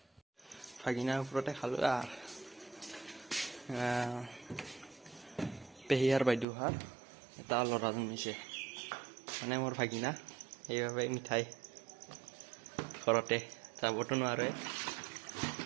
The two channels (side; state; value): left; drops out; at 6.5 s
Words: ভাগিনাৰ ওপৰতে খালোঁ পেহীয়াৰ বাইদেউহাৰ এটা ল'ৰা জন্মিছে, মানে মোৰ ভাগিনা। সেইবাবে মিঠাই ঘৰতে যাবতো নোৱাৰে,